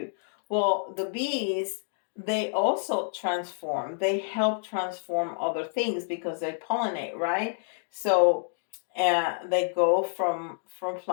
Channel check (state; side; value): silent; right; digital silence